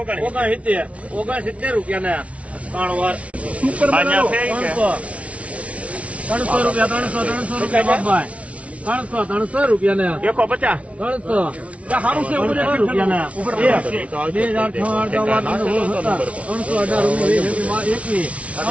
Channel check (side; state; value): left; late; 0.064 ms